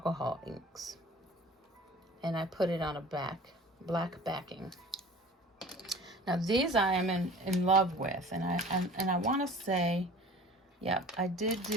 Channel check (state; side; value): normal; both; correlation 0.43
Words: inks, and I put it on a black backing. Now these I am in love with, and I want to say, yep, I did